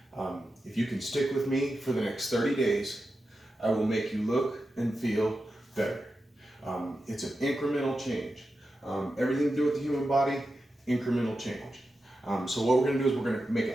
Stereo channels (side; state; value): both; normal; correlation 0.90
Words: If you can stick with me for the next 30 days, I will make you look and feel better. It's an incremental change. Everything to do with the human body, incremental change. So what we're going to do is we're going to make